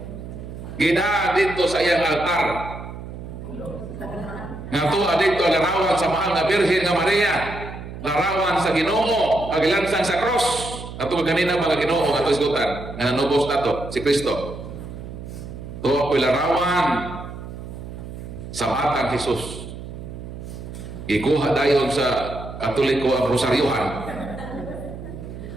Gida dito sa iyang altar. Nga tuwa dito larawan sa mahal na Birhen nga Maria, larawan sa Ginoo, agilansang sa cross. Ato ganina mga Ginoo ato isgutan nga nanubos nato si Kristo. Tuwa ko'y larawan sa batang Jesus. Ikuha dayon sa Katoliko ang rosaryohan.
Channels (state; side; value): noise; right; hum, 11 dB below the sound